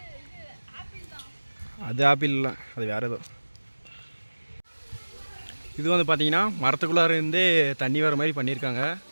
அது ஆப்பிள் இல்லை, அது வேறு ஏதோ. இது வந்து பார்த்தீங்கன்னா மரத்துக்குள்ளார இருந்தே தண்ணி வர மாதிரி பண்ணியிருக்காங்க.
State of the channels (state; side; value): inverted; both; correlation -1.00